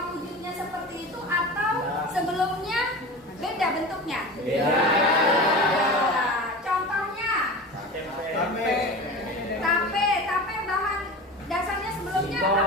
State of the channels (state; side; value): normal; both; correlation 0.32